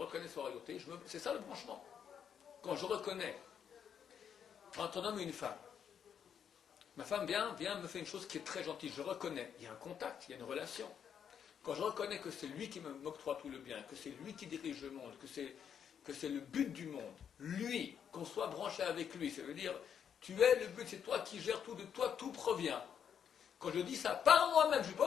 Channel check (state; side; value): quieter; right; 8.1 dB